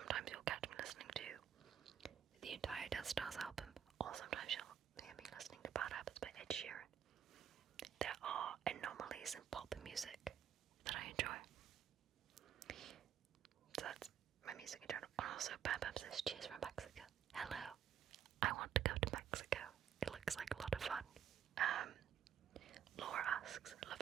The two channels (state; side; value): quieter; left; 9.1 dB